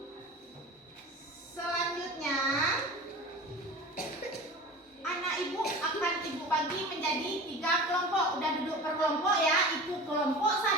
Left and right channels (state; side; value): normal; both; correlation 0.36